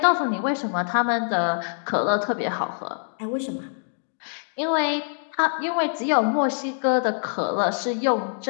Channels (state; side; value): silent; right; digital silence